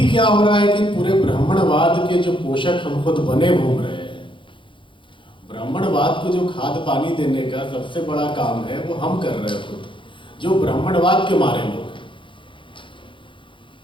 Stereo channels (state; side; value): late; right; 0.24 ms